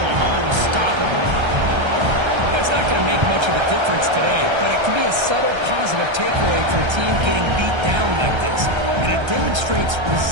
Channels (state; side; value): late; left; 1.3 ms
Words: unstoppable. That's not going to make much of a difference today, but it can be a subtle positive takeaway for a team getting beat down like this. And it demonstrates